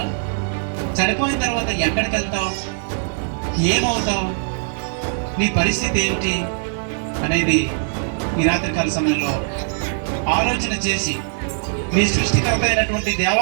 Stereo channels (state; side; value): silent; left; digital silence